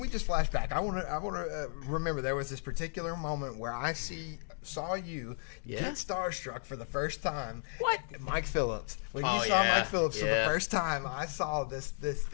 just flash back? I want to remember there was this particular moment where I saw you get starstruck for the first time. What? Mike Phillips. When you saw Mike Phillips for the first time, I saw this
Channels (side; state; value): right; silent; digital silence